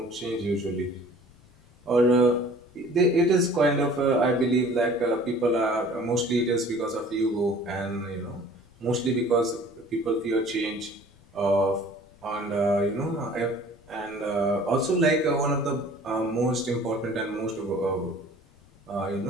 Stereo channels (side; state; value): left; noise; rumble, 28 dB below the sound